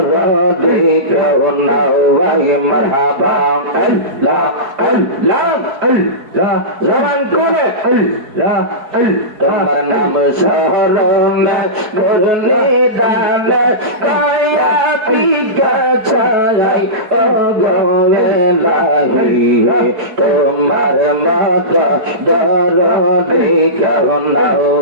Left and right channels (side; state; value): left; late; 4.7 ms